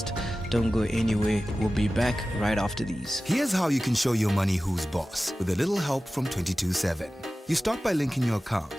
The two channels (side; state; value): both; normal; correlation 0.96